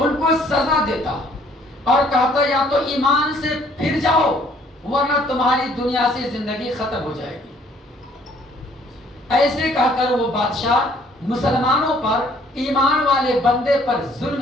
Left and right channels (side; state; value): both; normal; correlation 0.61